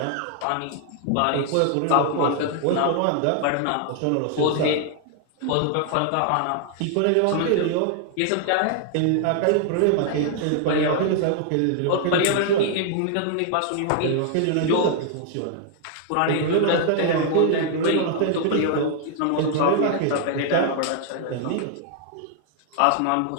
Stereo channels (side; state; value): both; different; correlation 0.00